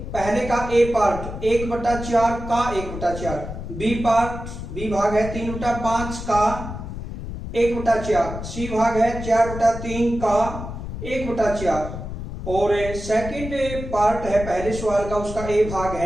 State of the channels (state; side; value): noise; left; rumble, 8 dB below the sound